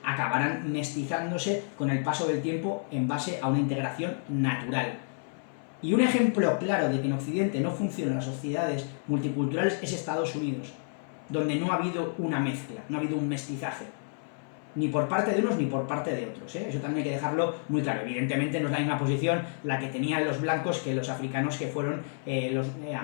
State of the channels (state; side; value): silent; right; 58 dB below the other